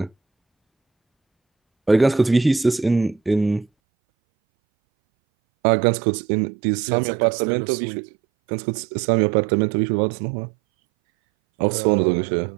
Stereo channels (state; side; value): drops out; left; at 3.7 s